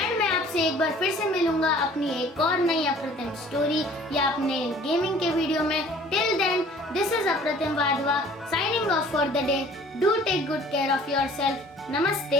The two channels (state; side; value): normal; both; correlation 0.51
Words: मैं आपसे एक बार फिर से मिलूंगा अपनी एक और नई अप्रतिम स्टोरी या अपने गेमिंग के वीडियो में। Till then this is Apratim Wadhwa signing off for the day. Do take good care of yourself.